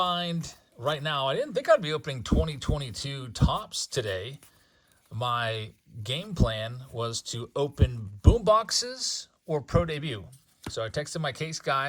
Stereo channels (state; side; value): identical; both; correlation 1.00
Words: right now. I didn't think I'd be opening 2022 tops today. My game plan was to open boom boxes or pro debut. So I texted my case